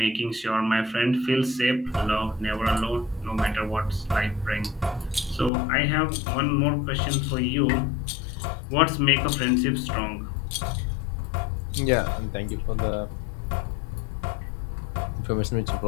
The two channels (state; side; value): drops out; right; at 5.5 s